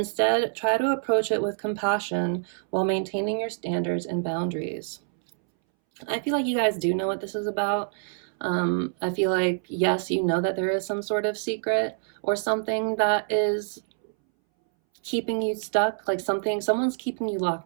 try to approach it with compassion while maintaining your standards and boundaries. I feel like you guys do know what this is about. I feel like, yes, you know that there is some sort of secret or something that is keeping you stuck, like someone's keeping you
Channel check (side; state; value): left; silent; 61 dB below the other